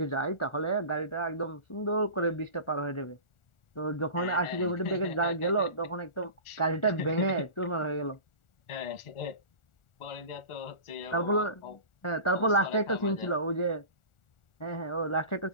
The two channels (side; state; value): right; late; 1.4 ms